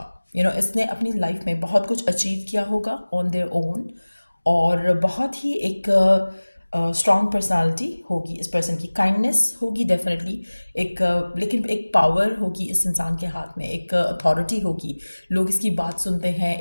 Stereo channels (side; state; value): both; inverted; correlation -1.00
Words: इसने अपनी लाइफ में बहुत कुछ अचीव किया होगा ऑन देयर ओन, और बहुत ही एक स्ट्रॉन्ग पर्सनालिटी होगी इस पर्सन की, काइंडनेस होगी डेफिनेटली, लेकिन एक पावर होगी इस इंसान के हाथ में, एक अथॉरिटी होगी, लोग इसकी बात सुनते हैं,